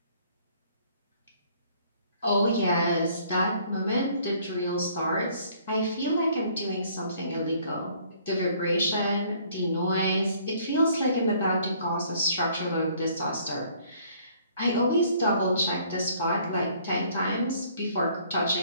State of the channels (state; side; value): inverted; both; correlation -0.60